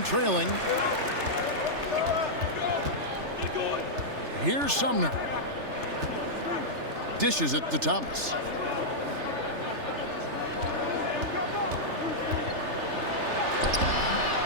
trailing. Here's Sumner. Dishes it to Thomas.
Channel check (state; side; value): late; left; 3.3 ms